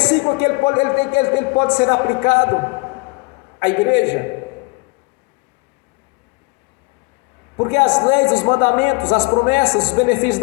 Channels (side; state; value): right; quieter; 28.0 dB